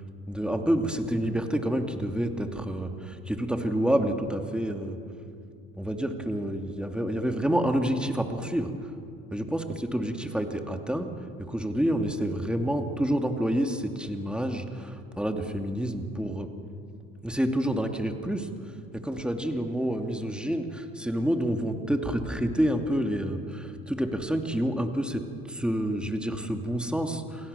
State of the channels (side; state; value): both; normal; correlation 0.82